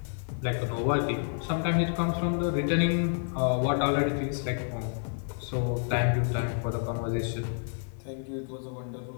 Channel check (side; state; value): right; silent; 58 dB below the other